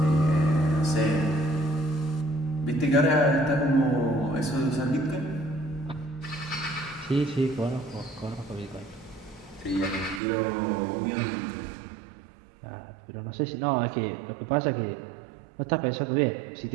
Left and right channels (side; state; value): left; drops out; at 10.2 s